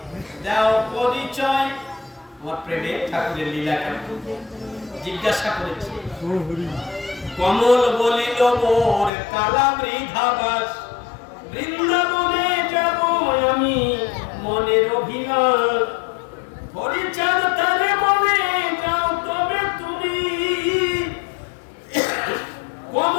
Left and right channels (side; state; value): right; drops out; at 9.1 s